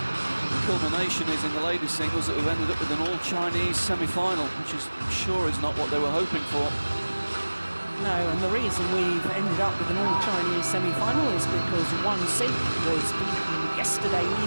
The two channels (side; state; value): both; inverted; correlation -1.00